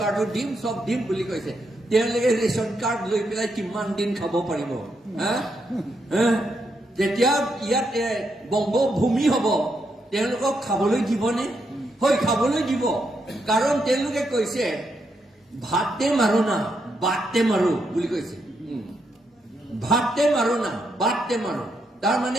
কাৰ্ডো দিম সব দিম বুলি কৈছে তেওঁলোকে ৰেচন কাৰ্ড লৈ পেলাই কিমান দিন খাব পাৰিব যেতিয়া ইয়াত বংগভূমি হ'ব তেওঁলোকক খাবলৈ দিবনে হয় খাবলৈ দিব কাৰণ তেওঁলোকে কৈছে ভাতে মাৰো না বাটে মাৰো বুলি কৈছে ভাতে মাৰো না বাটে মাৰো তাৰ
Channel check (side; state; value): both; normal; correlation 0.80